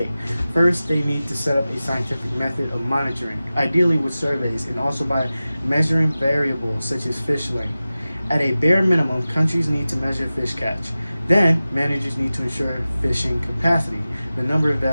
First, they need to set up a scientific method of monitoring, ideally with surveys, and also by measuring variables such as fish length. At a bare minimum, countries need to measure fish catch. Then, managers need to ensure fishing capacity. The number of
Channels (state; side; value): inverted; both; correlation -0.96